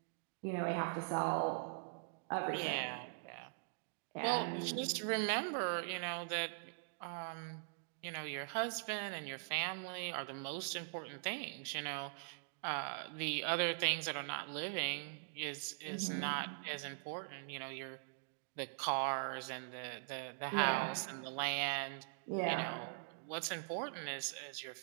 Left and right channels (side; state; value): left; silent; digital silence